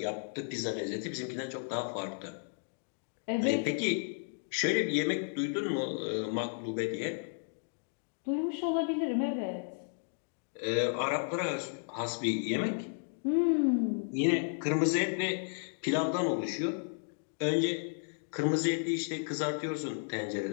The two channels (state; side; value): silent; right; digital silence